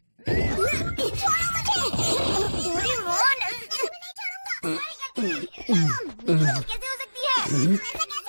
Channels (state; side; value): inverted; both; correlation -1.00